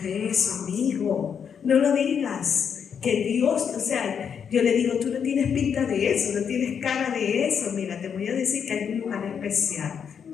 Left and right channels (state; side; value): quieter; right; 7.3 dB